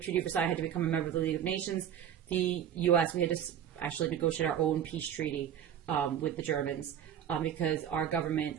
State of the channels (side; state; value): left; quieter; 9.5 dB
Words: of Versailles had to become a member of the League of Nations, the U.S., we had to actually negotiate our own peace treaty with the Germans because our